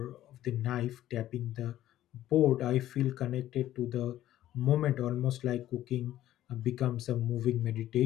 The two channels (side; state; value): right; quieter; 13.4 dB